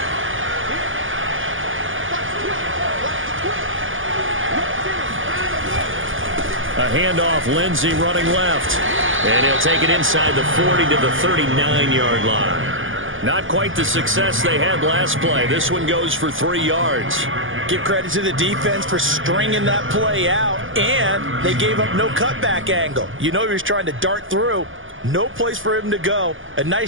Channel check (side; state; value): left; late; 0.58 ms